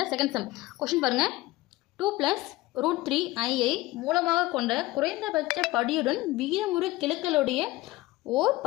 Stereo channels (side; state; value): right; quieter; 18.8 dB